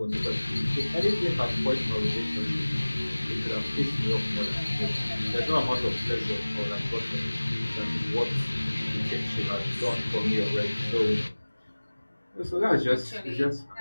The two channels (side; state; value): both; inverted; correlation -1.00